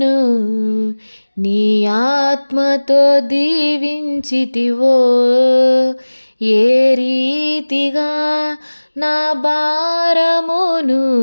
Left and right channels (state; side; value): inverted; both; correlation -1.00